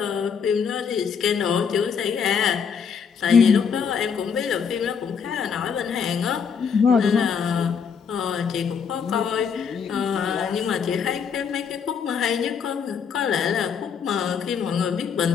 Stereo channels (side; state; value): right; quieter; 6.6 dB